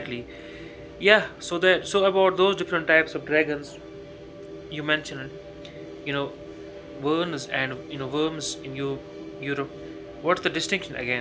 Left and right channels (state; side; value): identical; both; correlation 1.00